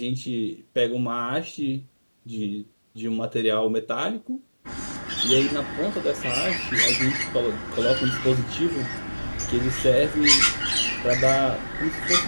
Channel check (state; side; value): inverted; both; correlation -1.00